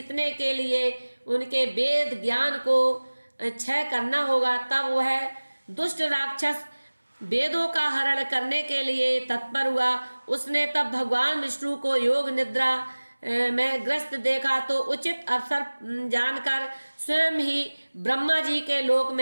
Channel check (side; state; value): both; inverted; correlation -1.00